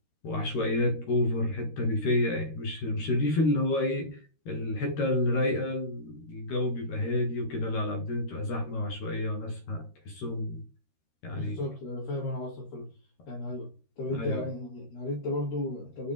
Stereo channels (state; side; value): late; right; 13 ms